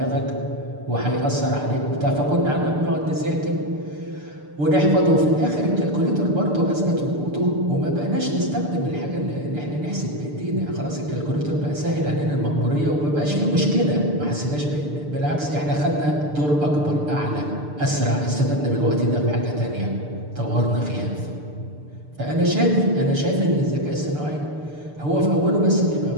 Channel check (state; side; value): late; left; 6.8 ms